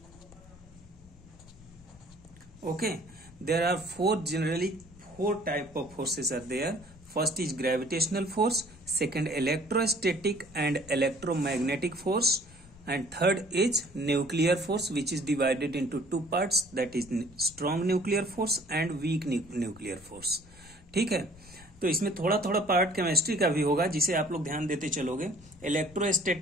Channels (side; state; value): left; noise; rumble, 23 dB below the sound